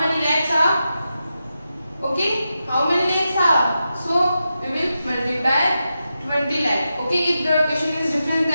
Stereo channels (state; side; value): inverted; both; correlation -0.89